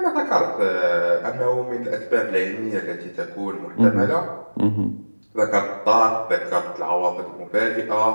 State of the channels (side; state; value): both; inverted; correlation -1.00